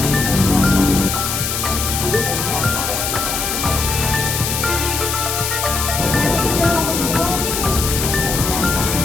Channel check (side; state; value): left; noise; hiss, 2 dB below the sound